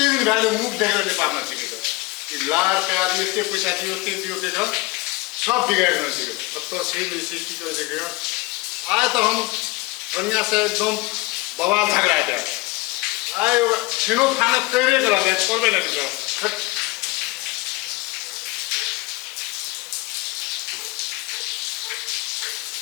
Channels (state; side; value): quieter; right; 22.9 dB